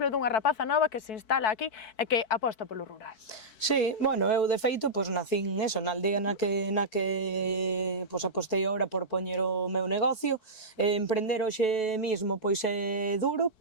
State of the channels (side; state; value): right; late; 4.6 ms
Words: dunha rapaza nova que se instala aquí e que aposta polo rural. Sí, bueno, eu de feito pois nacín eso, na aldea na que pois apostei agora por poñer o meu negocio. Emprender hoxe mismo pois é duro,